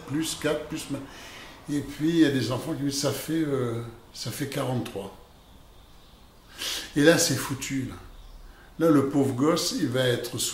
plus 4 plus machin. Et puis il y a des enfants qui disent ça fait 43. Et là c'est foutu. Là. Là, le pauvre gosse, il va être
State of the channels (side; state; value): both; identical; correlation 1.00